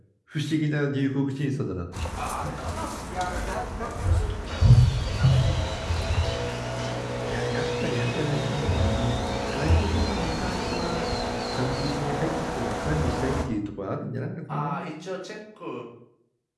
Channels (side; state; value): both; identical; correlation 1.00